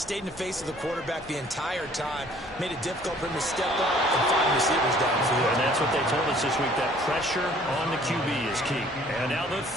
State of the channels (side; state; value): both; normal; correlation 0.56